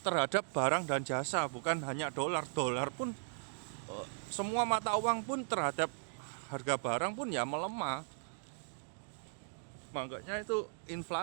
terhadap barang dan jasa, bukan hanya dolar pun, semua mata uang pun terhadap harga barang pun ya melemah. Makanya itu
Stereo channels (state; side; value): silent; left; digital silence